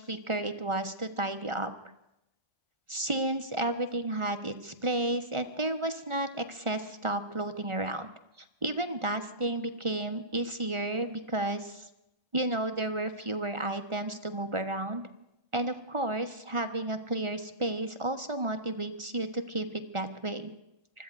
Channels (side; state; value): left; late; 1.4 ms